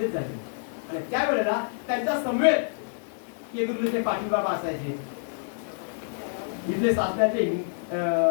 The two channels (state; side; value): silent; right; digital silence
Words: झालं. आणि त्यावेळेला त्यांच्या समवेत केंद्रुलीचे पाटील बाबा असायचे, इथले सासण्याचे